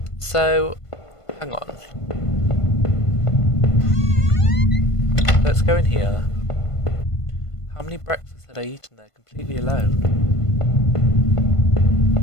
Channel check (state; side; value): late; right; 1.5 ms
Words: So, hang on. Let's go in here. How many breakfasts had I eaten there completely alone?